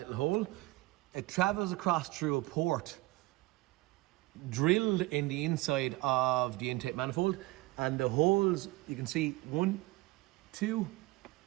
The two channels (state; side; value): quieter; left; 20.4 dB